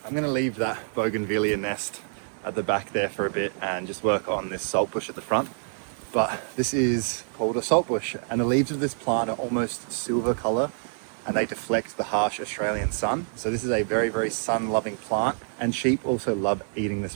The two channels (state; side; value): silent; left; digital silence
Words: I I'm gonna leave that bougainvillea nest at the back there for a bit and just work on this saltbush at the front. But this is called a saltbush, and the leaves of this plant are almost silver color and they deflect the harsh Australian sun. So this is a very, very sun-loving plant, and sheep also love eating this